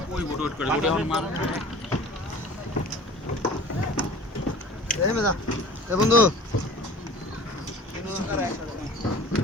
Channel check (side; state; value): both; normal; correlation 0.43